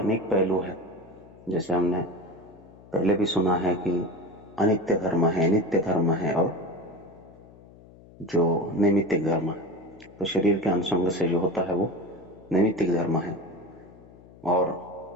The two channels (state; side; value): noise; left; hum, 22 dB below the sound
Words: पहलू हैं। जैसे हमने पहले भी सुना है कि अनित्य धर्म है, नित्य धर्म है और जो नैमित्तिक धर्म है। तो शरीर के अनुसंग से जो होता है वो नैमित्तिक धर्म है और